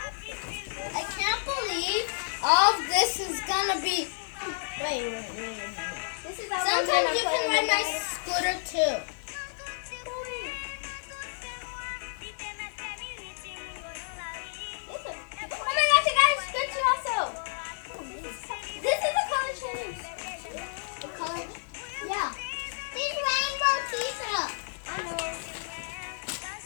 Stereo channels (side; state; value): right; silent; digital silence